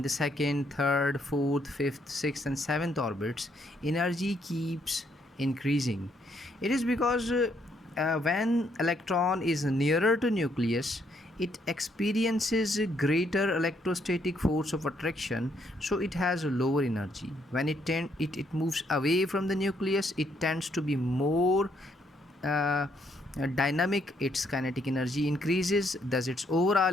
the second, third, fourth, fifth, sixth, and seventh orbits, energy keeps increasing. It is because when electron is nearer to nucleus, it experiences a greater electrostatic force of attraction, so it has a lower energy. When it moves away from the nucleus, it tends to be more uh, dynamic. Its kinetic energy increases, thus its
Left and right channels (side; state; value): both; normal; correlation 0.72